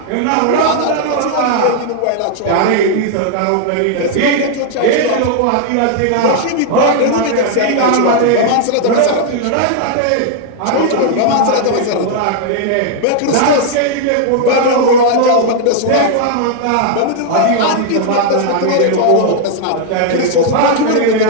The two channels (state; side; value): different; both; correlation -0.01